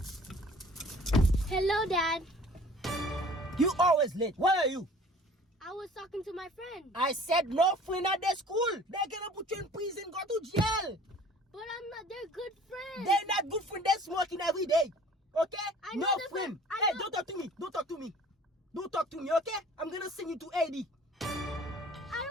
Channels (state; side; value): normal; both; correlation 0.49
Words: Hello, Dad. You always late. Where are you? I was talking to my friend. I said no friend at the school. They're gonna put you in prison, go to jail. But I'm not. They're good friends. They're not good friends. They're smoking every day. Okay? I know No the friend. I Hey, know- don't talk to me. Don't talk to me. Don't talk to me, okay? I'm gonna send you to AD. I